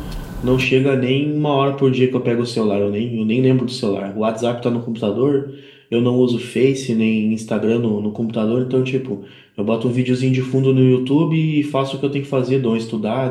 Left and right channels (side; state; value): both; identical; correlation 1.00